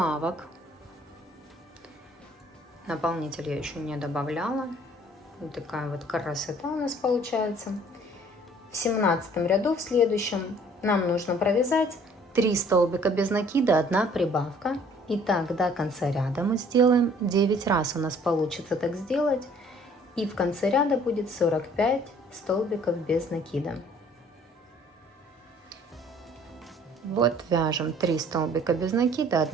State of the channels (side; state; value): both; normal; correlation 0.56